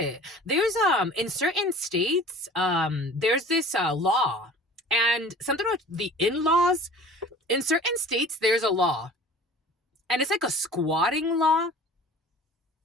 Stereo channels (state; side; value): normal; both; correlation 0.44